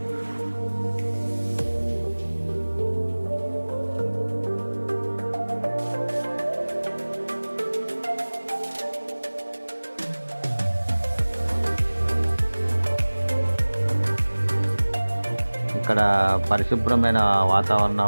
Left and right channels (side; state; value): both; inverted; correlation -1.00